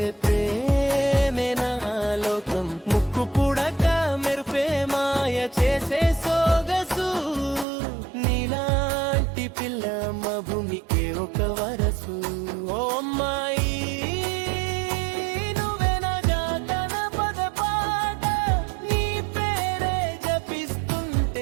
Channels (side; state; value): left; drops out; at 7.7 s